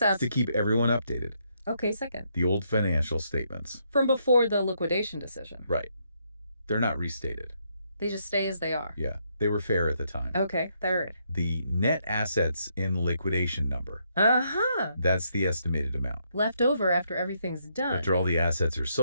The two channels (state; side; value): inverted; both; correlation -0.75